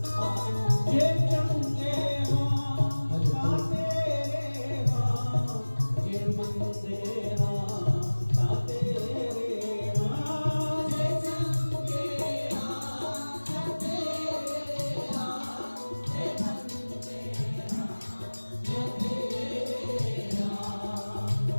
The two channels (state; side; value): inverted; both; correlation -1.00